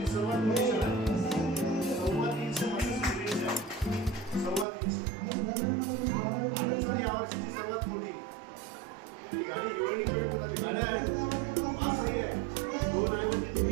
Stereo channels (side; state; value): left; drops out; at 4.7 s